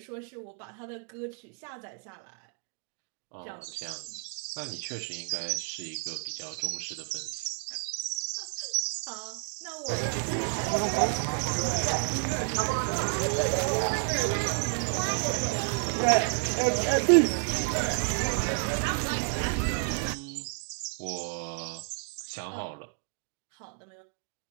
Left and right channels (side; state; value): left; quieter; 33.0 dB